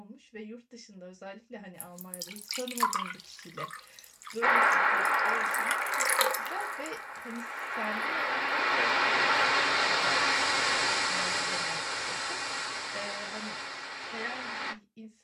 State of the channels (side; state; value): both; identical; correlation 1.00